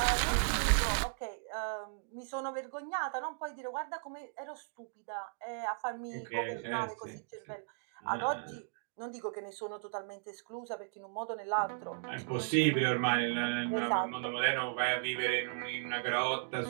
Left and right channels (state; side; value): silent; left; digital silence